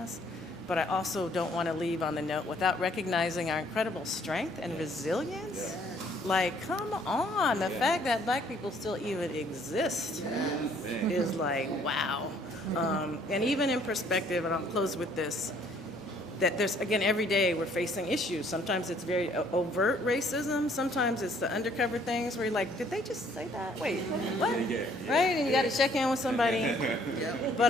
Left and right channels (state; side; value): normal; both; correlation 0.62